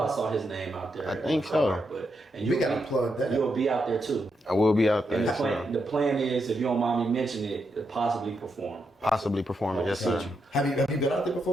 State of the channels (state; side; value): normal; both; correlation 0.82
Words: I so. saw his name out there. I think so. But We gotta plug that. You'll be out there too. I will be out there. And the plan is, if you don't mind me mentioning it, possibly perform. Possibly performing, yes, sir. Have you been out there